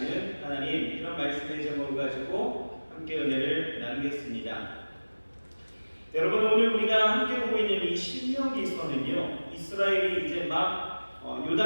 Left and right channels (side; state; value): both; inverted; correlation -1.00